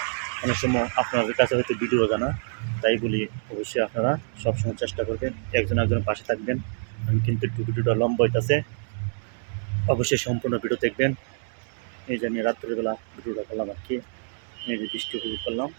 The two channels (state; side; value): silent; left; digital silence